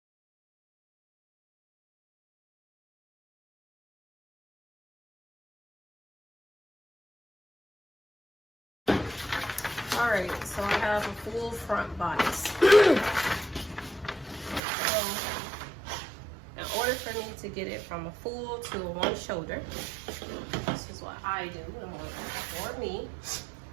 All right, so I have a full front bodice. So in order for me to get it from a full to a one shoulder, this is what I do, and works for me,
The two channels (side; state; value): left; drops out; at 14.6 s